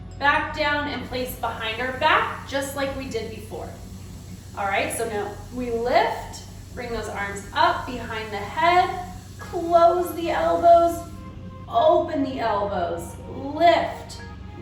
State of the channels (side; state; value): both; identical; correlation 1.00